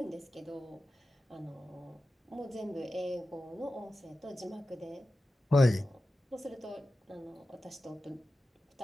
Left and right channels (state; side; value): normal; both; correlation 0.93